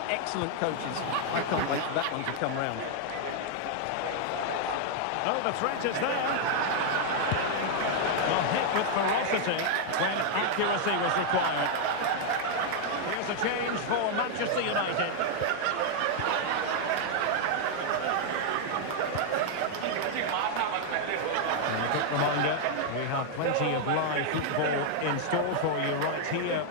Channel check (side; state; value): both; different; correlation 0.00